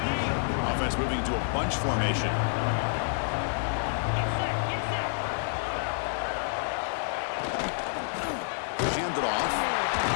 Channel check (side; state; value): right; silent; digital silence